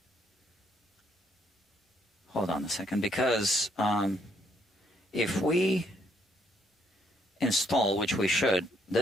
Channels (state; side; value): normal; both; correlation 0.70